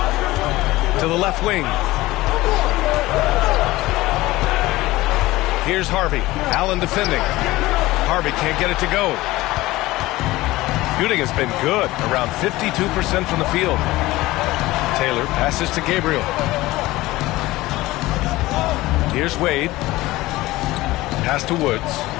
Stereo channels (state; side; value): quieter; right; 18.5 dB